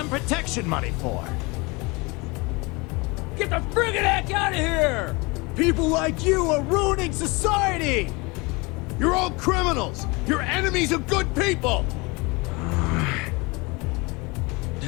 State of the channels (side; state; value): right; quieter; 26.3 dB